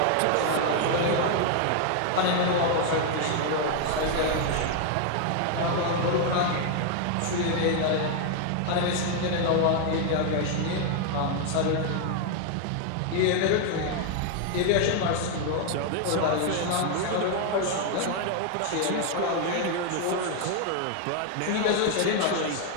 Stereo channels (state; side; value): different; both; correlation 0.00